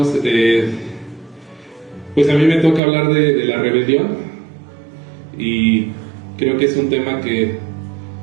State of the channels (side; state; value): left; drops out; at 2.8 s